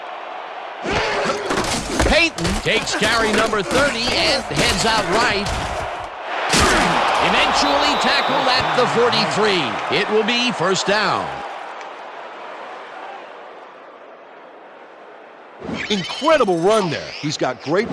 Payton takes carry number 30 and heads out right. Eventually tackled at the 43. It will be first down. Incredible run there. He's got great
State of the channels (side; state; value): both; identical; correlation 1.00